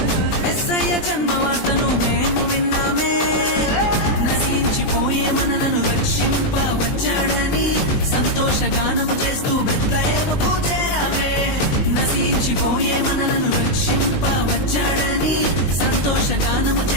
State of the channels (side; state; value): right; late; 20 ms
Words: మెస్సయ్య జన్మవార్తను మేము విన్నామే. నశించిపోయే మనలను రక్షింప వచ్చాడని సంతోషగానము చేస్తూ బెత్లెహేముకు చేరామే. నశించిపోయే మనలను రక్షింప వచ్చాడని సంతోషగానము